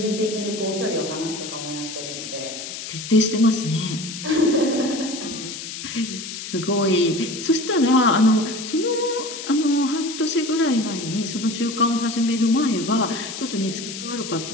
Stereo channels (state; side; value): noise; left; hiss, 9 dB below the sound